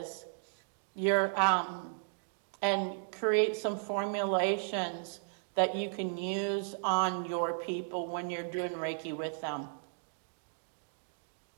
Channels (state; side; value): silent; left; digital silence